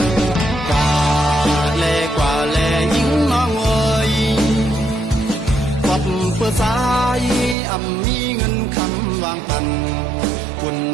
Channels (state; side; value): drops out; left; at 7.6 s